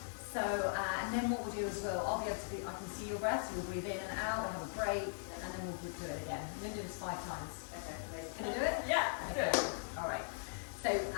So, and then what we'll do as well, I can see your breath, so we'll breathe in and out, we'll have a break, and then we'll do it again. We're going to do this 5 times. Okay. Can you do it? Yeah. Okay. All right. So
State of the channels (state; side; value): silent; right; digital silence